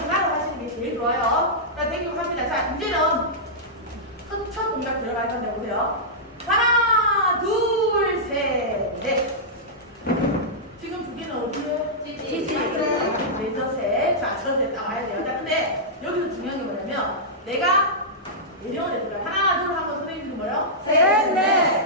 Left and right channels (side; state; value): both; normal; correlation -0.12